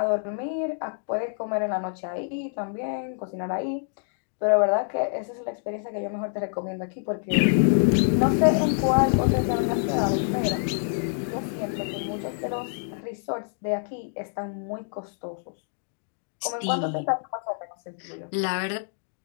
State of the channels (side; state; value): right; silent; digital silence